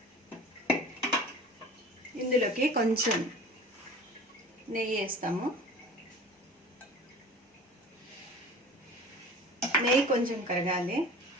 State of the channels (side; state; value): both; normal; correlation 0.40